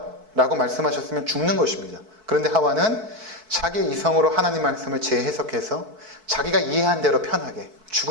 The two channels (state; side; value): late; left; 4.6 ms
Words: 라고 말씀하셨으면 죽는 것입니다. 그런데 하와는 자기 이성으로 하나님 말씀을 재해석해서 자기가 이해한 대로 편하게